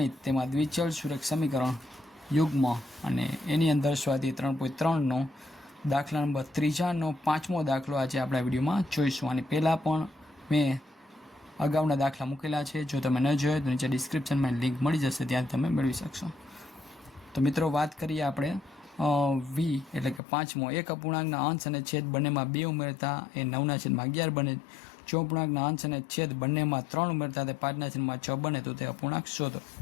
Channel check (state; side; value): drops out; right; at 20.2 s